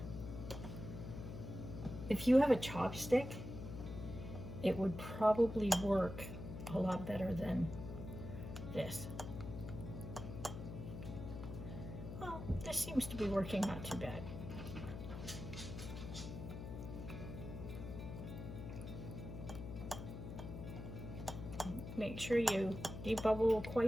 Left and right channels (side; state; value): left; noise; hum, 8 dB below the sound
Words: If you have a chopstick, it would probably work a lot better than this. Well, this seems to be working not too bad. Make sure you debubble